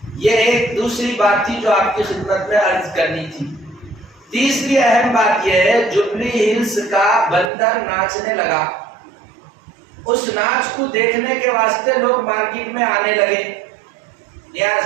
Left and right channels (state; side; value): drops out; left; at 7.5 s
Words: ایک دوسری بات تھی جو آپ کی خدمت میں عرض کرنی تھی۔ تیسری اہم بات یہ ہے، جبلی ہلز کا بندر ناچنے لگا، اس ناچ کو دیکھنے کے واسطے لوگ مارکیٹ میں آنے لگے۔